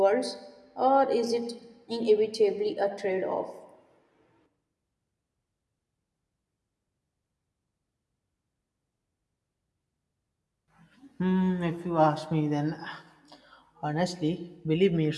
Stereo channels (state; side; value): identical; both; correlation 1.00